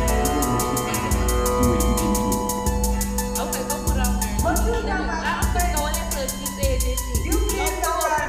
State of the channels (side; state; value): both; identical; correlation 1.00